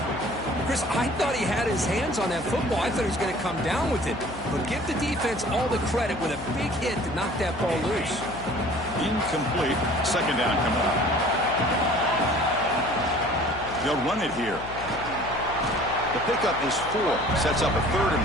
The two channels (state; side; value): noise; left; hum, 14 dB below the sound